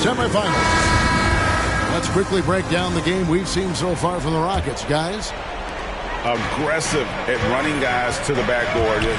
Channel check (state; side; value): identical; both; correlation 1.00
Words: semifinals. Let's quickly break down the game we've seen so far from the Rockets, guys. Aggressive at running guys to the backboard.